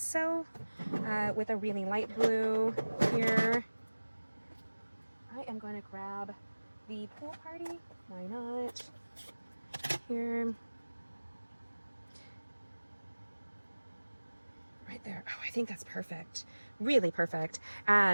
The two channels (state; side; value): inverted; both; correlation -1.00